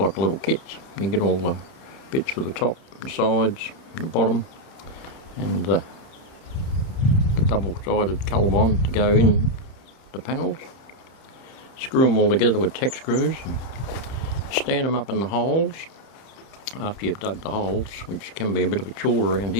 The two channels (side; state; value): right; late; 30 ms